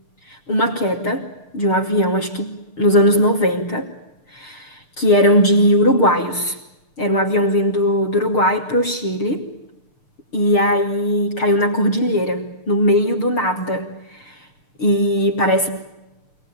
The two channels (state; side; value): late; right; 6.6 ms